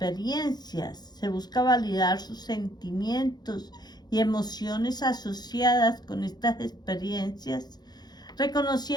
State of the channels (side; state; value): right; late; 0.20 ms